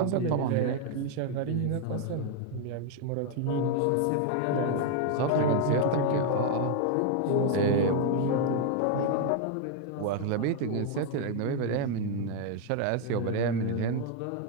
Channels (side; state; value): both; different; correlation 0.00